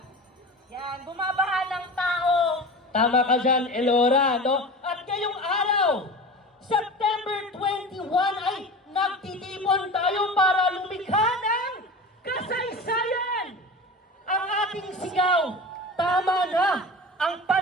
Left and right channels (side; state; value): both; normal; correlation 0.32